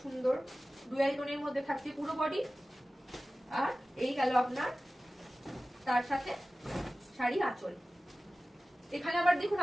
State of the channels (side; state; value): both; normal; correlation 0.96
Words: সুন্দর ডুয়াল টোনের মধ্যে থাকছে পুরো বডি। আর এই গেল আপনার তার সাথে শাড়ি আঁচল। এখানে আবার দেখুন